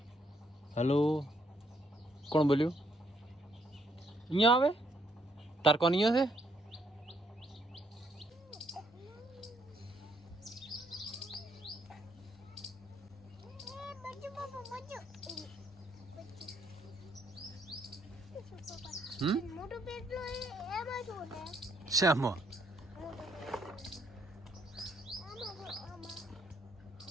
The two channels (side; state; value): both; normal; correlation 0.72